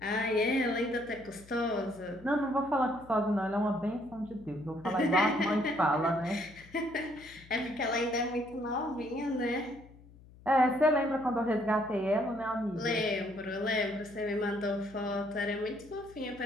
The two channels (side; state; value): left; noise; hum, 22 dB below the sound